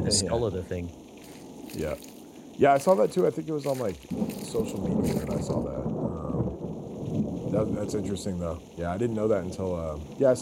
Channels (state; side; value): identical; both; correlation 1.00